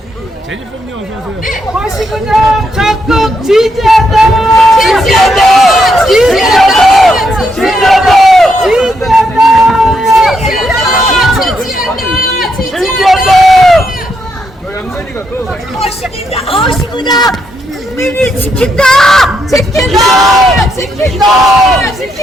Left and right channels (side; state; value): both; normal; correlation 0.79